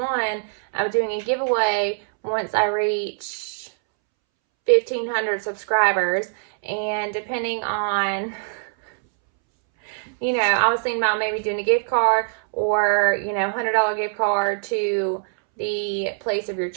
I'm doing a giveaway once I reach 1,500 subscribers. And depending on, I was thinking about maybe doing a gift card or, $100 gift card to the place of your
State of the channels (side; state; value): left; silent; 64 dB below the other